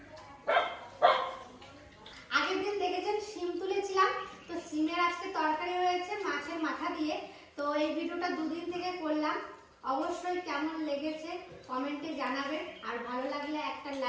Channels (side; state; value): both; identical; correlation 1.00